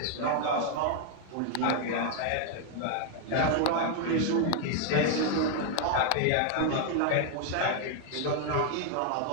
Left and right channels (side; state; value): both; different; correlation 0.00